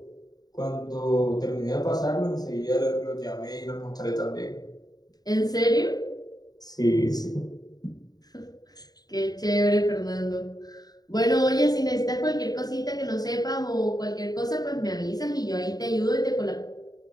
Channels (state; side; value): late; right; 0.19 ms